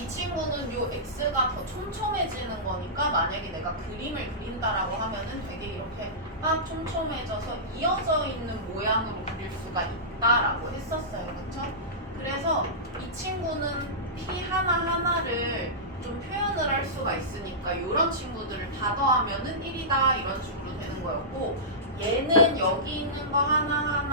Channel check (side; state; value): both; normal; correlation -0.17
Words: 친구는 요 x가 더 촘촘해지는 거니까 만약에 내가 그림을 그린다라고 하면은 되게 이렇게 막 촘촘해져서 이어져 있는 모양으로 그릴 수가 있다라고 했었어요. 그렇죠? 그래서 이 친구는 p 하나하나를 좀 표현을 할 수가 있으니까 이런 친구들을 다 더하면은 1이다 이런 식으로 되는 거였고, 얘는 여기 있는 거